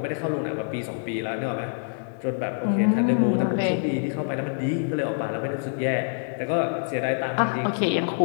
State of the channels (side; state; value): right; silent; digital silence